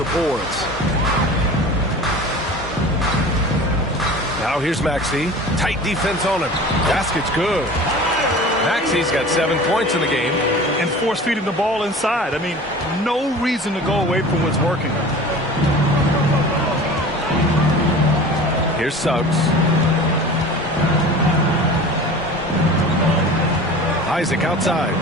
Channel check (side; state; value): both; normal; correlation 0.39